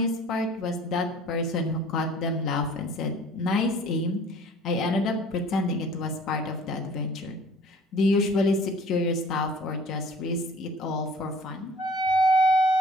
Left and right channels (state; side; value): normal; both; correlation 0.49